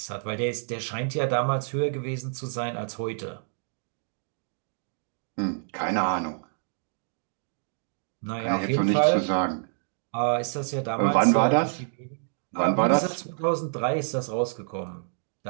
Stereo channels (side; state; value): left; silent; digital silence